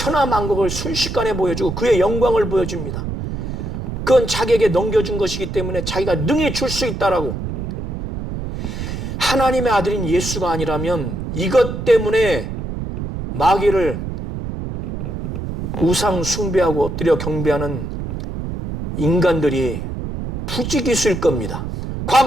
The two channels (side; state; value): right; noise; rumble, 5 dB below the sound